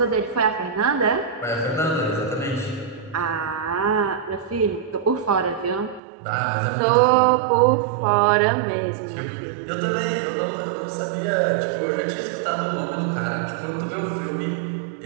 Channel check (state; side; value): drops out; left; at 6.0 s